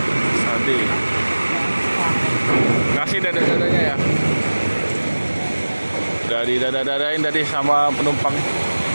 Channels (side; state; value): both; inverted; correlation -1.00